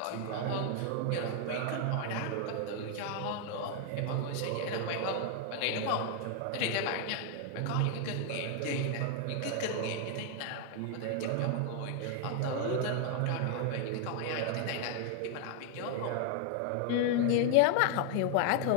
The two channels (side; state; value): both; different; correlation 0.00